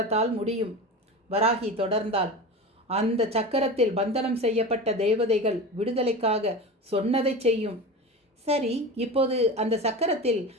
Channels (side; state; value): both; normal; correlation 0.29